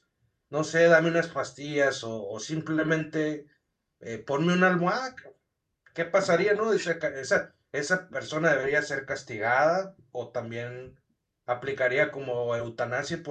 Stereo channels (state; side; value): identical; both; correlation 1.00